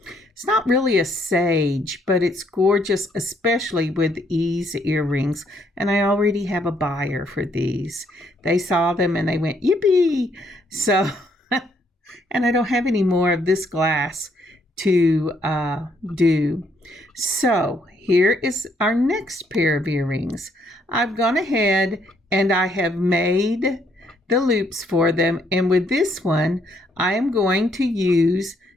not really a sage, but it's gorgeous, especially with these earrings. And I already have a buyer for these. They saw them and they went, yippee! So, and I don't have any more of this glass to do. So here is our next pair of earrings. I've gone ahead and I have made the loops for them. And with this one, I am going to use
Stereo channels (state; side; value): normal; both; correlation 0.70